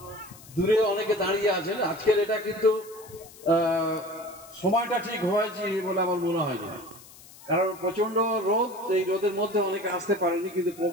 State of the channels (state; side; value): noise; left; hiss, 21 dB below the sound